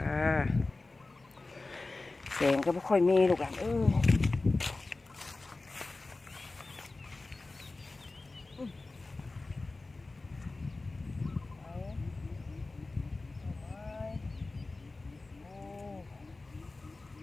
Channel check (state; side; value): quieter; right; 3.3 dB